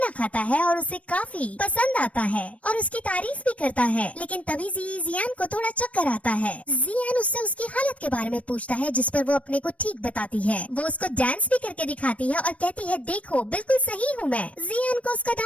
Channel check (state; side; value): late; right; 0.065 ms